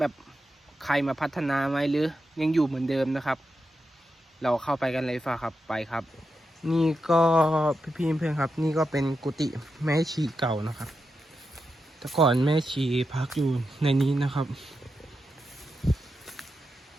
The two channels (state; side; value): normal; both; correlation 0.88